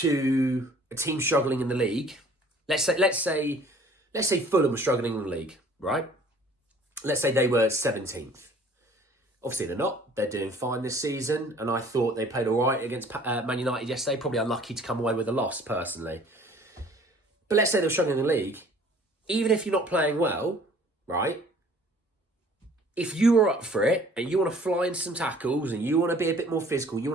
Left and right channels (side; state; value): both; normal; correlation 0.53